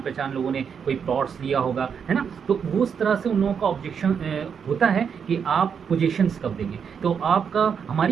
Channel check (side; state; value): left; quieter; 7.0 dB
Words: पहचान लोगों ने कोई प्लॉट्स लिया होगा, है ना। तो वो उस तरह से उन लोगों का ऑब्जेक्शन होता है कि आप पोजीशंस कब देंगे। तो आपका